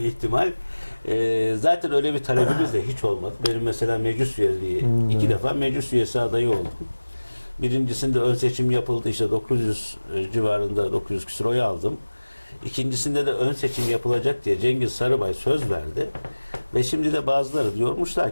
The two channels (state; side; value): inverted; both; correlation -1.00